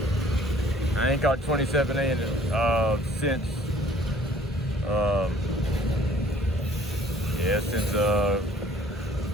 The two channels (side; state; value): both; normal; correlation 0.56